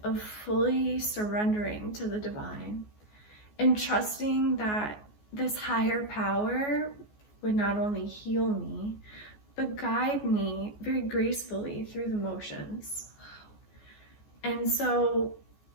of fully surrendering to the divine and trusting that this higher power would not only heal me, but guide me very gracefully through the motions. And so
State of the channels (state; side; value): late; right; 14 ms